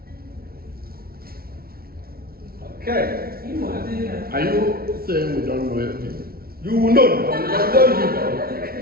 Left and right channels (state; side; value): late; left; 0.44 ms